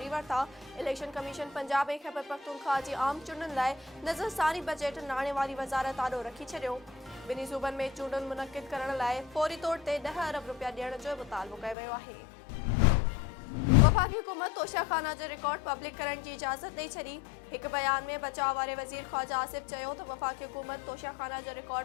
वरिता। इलेक्शन कमीशन पंजाब ऐं खैबर पख्तूनख्वा जी आम चूंडुनि लाइ नज़रसानी बजट नाणे वारी वज़ारत आॾो रखी छॾियो। ॿिन्ही सूबनि में चूंडुनि मुनक़िद करण लाइ फौरी तौर ते 10 अरब रुपया ॾियण जो मुतालबो कयो वियो आहे। वफ़ाक़ी हुकूमत तोशाखाना जो रिकॉर्ड पब्लिक करण की इजाज़त ॾेई छॾी। एक बयान में बचाव वारे वज़ीर ख्वाजा आसिफ चयो त वफ़ाक़ी हुकूमत तोशाखाना जो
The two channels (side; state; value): right; drops out; at 11.8 s